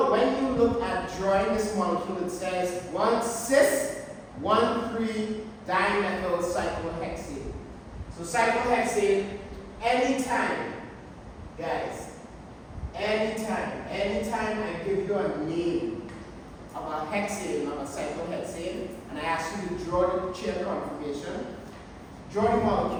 when you look at drawing this molecule, it says 1-cis, 1,3-dimethyl cyclohexane. So cyclohexane, anytime, guys, anytime I give you a name of a hexane, of a cyclohexane, and I ask you to draw the chair conformation, draw the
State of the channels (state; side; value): identical; both; correlation 1.00